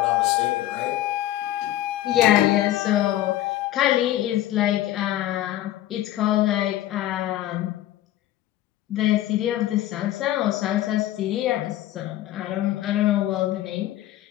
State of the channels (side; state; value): right; quieter; 14.1 dB